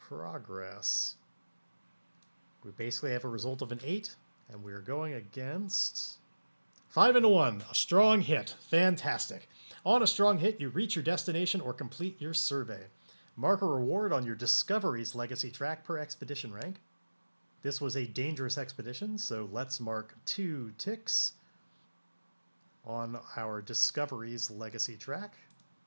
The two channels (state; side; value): inverted; both; correlation -1.00